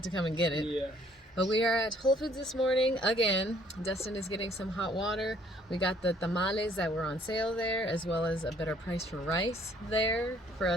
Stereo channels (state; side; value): normal; both; correlation 0.62